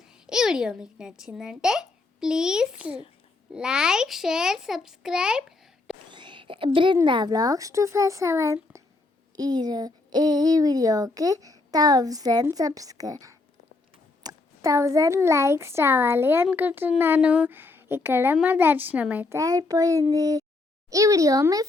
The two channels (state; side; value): quieter; right; 3.3 dB